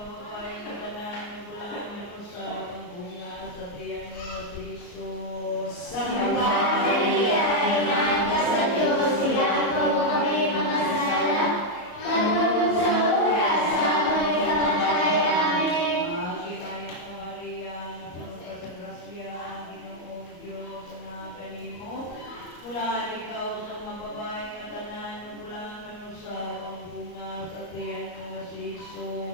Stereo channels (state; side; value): late; right; 34 ms